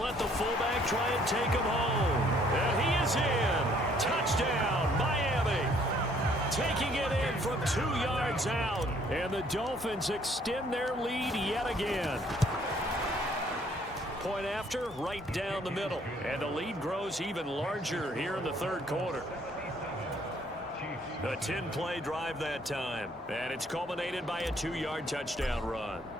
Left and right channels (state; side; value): normal; both; correlation 0.63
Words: the fullback try and take him home. And he is in. Touchdown, Miami. Taking it in from 2 yards out. And the Dolphins extend their lead yet again. Point after, right down the middle. And the lead grows even larger here in the 3rd quarter. A 10-play drive that time. And it's culminated by a 2-yard touchdown run.